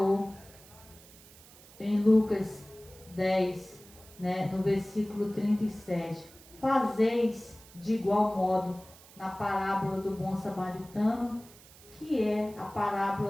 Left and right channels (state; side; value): noise; right; hiss, 22 dB below the sound